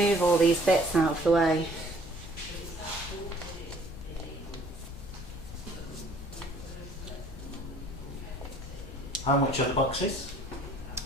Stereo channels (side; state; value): left; noise; hum, 19 dB below the sound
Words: all these bits out of the way. How much are the boxes?